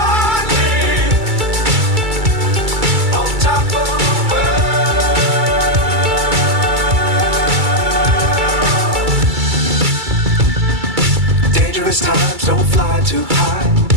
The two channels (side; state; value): left; late; 2.3 ms